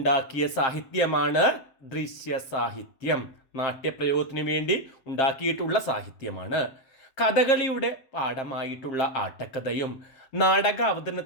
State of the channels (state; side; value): late; right; 7.6 ms